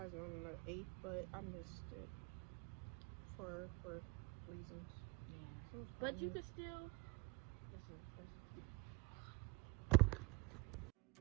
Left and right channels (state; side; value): quieter; left; 26.0 dB